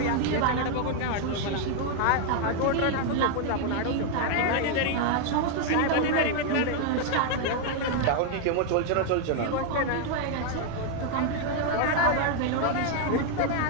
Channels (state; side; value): different; both; correlation 0.00